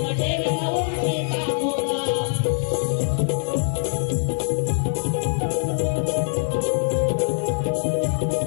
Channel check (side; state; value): right; silent; digital silence